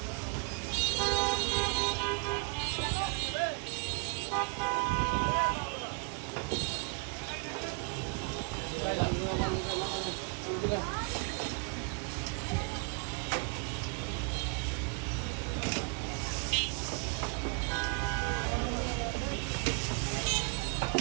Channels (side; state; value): left; quieter; 34.2 dB